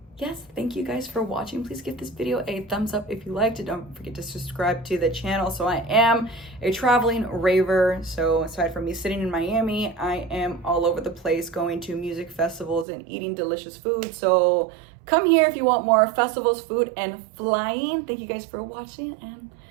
yes, thank you guys for watching. Please give this video a thumbs up if you liked it. Don't forget to subscribe to the channel. So I am a traveling raver. So aside from me sitting in Miami, I am all over the place going to music festivals and eating delicious food. So come here if you want more festivals, food, and flying. Thank you guys for watching, and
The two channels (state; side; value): drops out; left; at 12.9 s